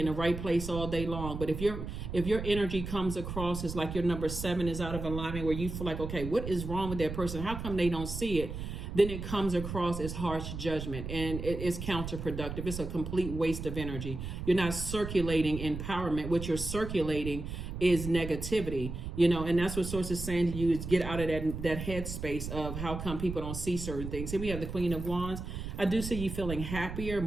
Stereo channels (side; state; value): right; noise; rumble, 7 dB below the sound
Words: in the right place all day long, but if your energy comes across as like your number 7 is out of alignment, where you feel like, okay, what is wrong with that person? How come they don't see it? Then it comes across as harsh judgment, and it is counterproductive. It's a complete waste of energy. You're not circulating empowerment. What you're circulating is negativity, and that's what Source is saying to you, is get out of that headspace of how come people don't see certain things. Here we have the Queen of Wands. I do see you feeling happier,